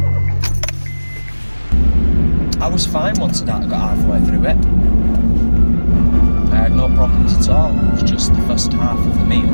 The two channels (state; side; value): inverted; both; correlation -1.00